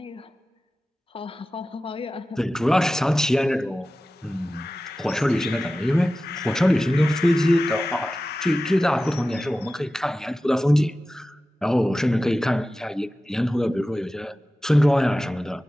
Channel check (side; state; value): both; normal; correlation 0.95